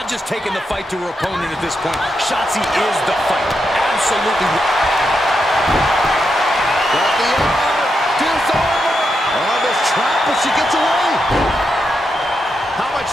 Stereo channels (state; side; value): normal; both; correlation 0.84